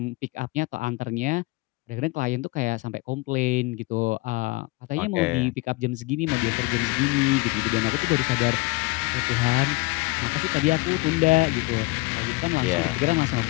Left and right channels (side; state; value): right; quieter; 23.7 dB